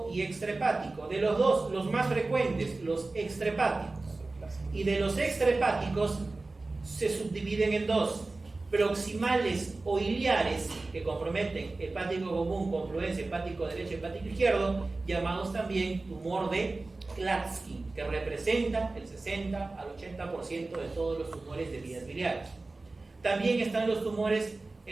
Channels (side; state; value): left; quieter; 3.3 dB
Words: y extrahepático. De los dos, los más frecuentes, los extrahepáticos. Y de los extrahepáticos se subdividen en dos: proximales o iliares, que comprometen hepático común, confluencia hepático derecho, hepático izquierdo, llamados también tumor de Klatskin, que representa el 60 al 80% de todos los tumores de vías biliares. También están los tumores